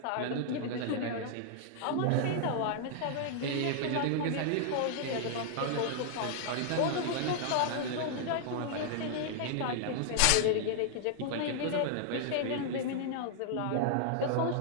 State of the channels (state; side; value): different; both; correlation -0.01